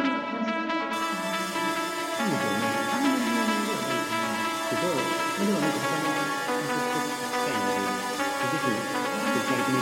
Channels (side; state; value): both; identical; correlation 1.00